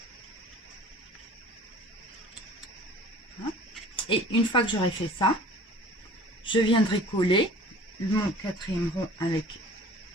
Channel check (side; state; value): both; normal; correlation 0.46